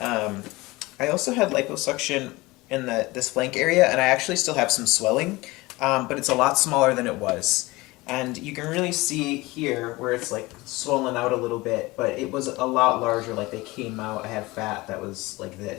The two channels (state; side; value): quieter; right; 21.5 dB